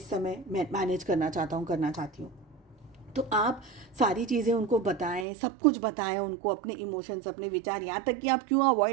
समय मैनेज करना चाहता हूँ, करना चाहती हूँ। तो आप सारी चीज़ें उनको बताएं, सब कुछ बताएं उनको, अपने इमोशंस, अपने विचार, यहाँ तक कि आप क्यों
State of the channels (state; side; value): drops out; left; at 5.2 s